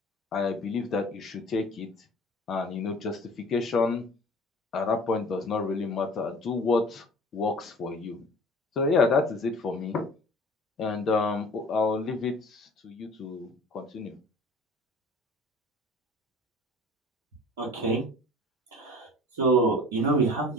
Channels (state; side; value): normal; both; correlation 0.46